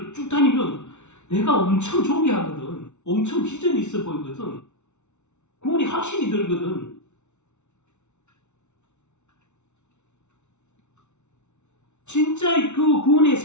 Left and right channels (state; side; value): late; right; 0.82 ms